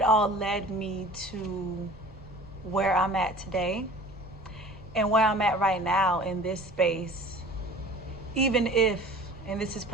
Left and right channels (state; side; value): noise; right; rumble, 21 dB below the sound